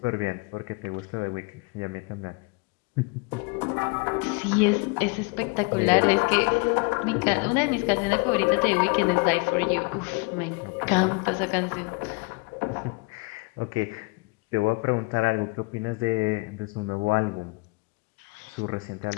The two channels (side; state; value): right; quieter; 29.3 dB